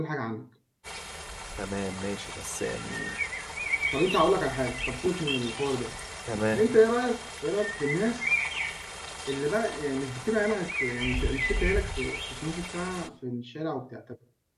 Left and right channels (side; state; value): both; identical; correlation 1.00